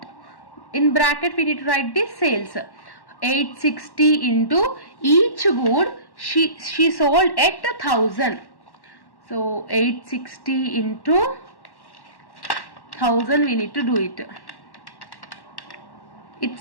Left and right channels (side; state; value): right; late; 1.1 ms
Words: In bracket we need to write the sales. 860 into each good she sold at 1,000. So 860 into 1,000 we need to do it.